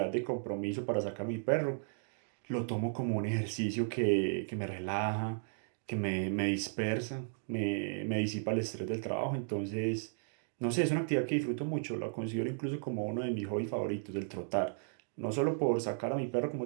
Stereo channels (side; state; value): left; silent; digital silence